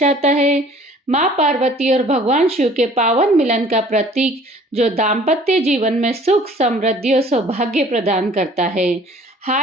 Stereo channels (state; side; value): normal; both; correlation 0.52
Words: है। माँ पार्वती और भगवान शिव के पावन मिलन का प्रतीक, जो दाम्पत्य जीवन में सुख, समृद्धि और सौभाग्य प्रदान करता है।